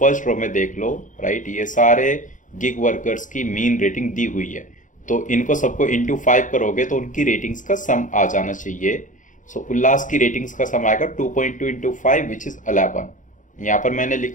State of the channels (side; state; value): right; late; 0.37 ms